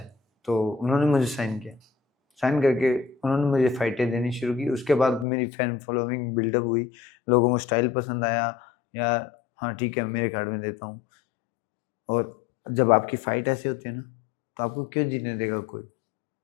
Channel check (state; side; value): drops out; right; at 5.2 s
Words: तो उन्होंने मुझे साइन किया। साइन करके उन्होंने मुझे फाइटें देनी शुरू की। उसके बाद मेरी फैन फॉलोइंग बिल्डअप हुई, लोगों को स्टाइल पसंद आया, या हाँ ठीक है मेरे कार्ड में देता हूँ। और जब आपकी फाइट ऐसे होती है ना, तो आपको क्यों जीतने देगा कोई?